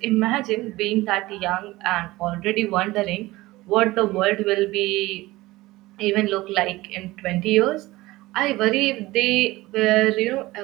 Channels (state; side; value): quieter; left; 19.1 dB